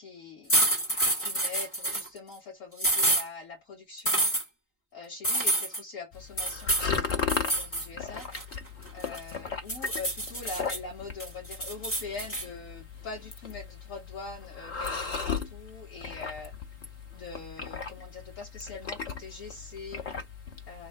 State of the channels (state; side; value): late; right; 3.9 ms